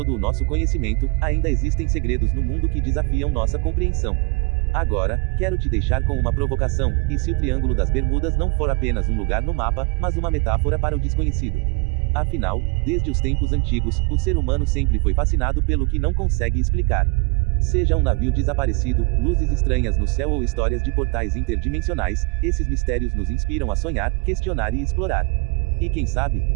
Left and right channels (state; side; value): quieter; left; 29.4 dB